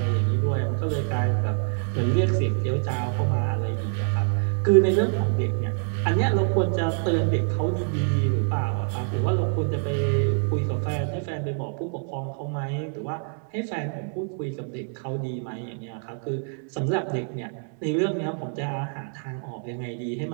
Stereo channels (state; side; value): silent; left; 56 dB below the other